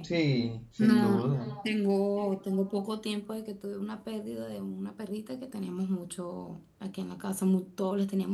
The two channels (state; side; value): identical; both; correlation 1.00